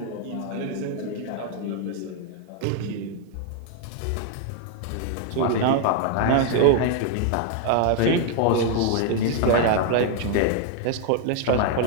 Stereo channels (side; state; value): both; different; correlation 0.00